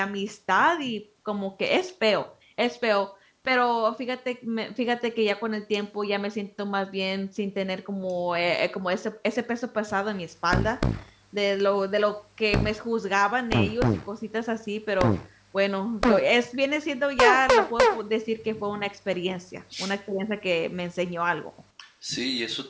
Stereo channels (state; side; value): identical; both; correlation 1.00